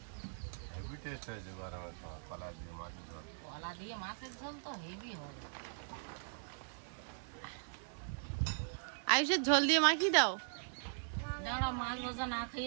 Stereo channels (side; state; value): left; silent; 51 dB below the other